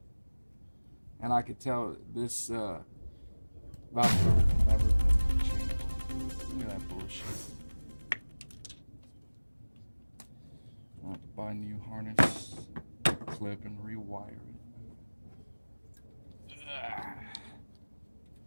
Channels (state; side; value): inverted; both; correlation -1.00